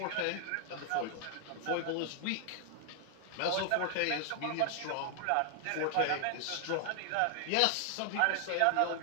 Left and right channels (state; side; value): different; both; correlation 0.00